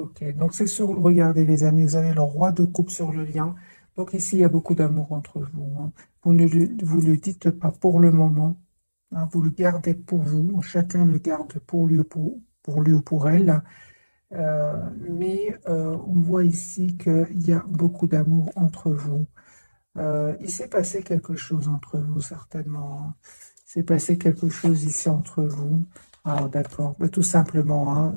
Donc, c'est sur... Regardez, les amis, vous avez le roi de coupe sur le lien. Donc, ici, il y a beaucoup d'amour entre vous, hein. Vous ne le dites pas pour le moment, hein, vous le gardez pour vous. Chacun le garde pour lui, pour lui ou pour elle. Mais on voit ici qu'il y a beaucoup d'amour entre vous. Il s'est passé quelque chose entre vous, certainement, hein. Il s'est passé quelque chose ici entre vous. Ah, d'accord. Bah, tout simplement, hein.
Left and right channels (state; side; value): inverted; both; correlation -1.00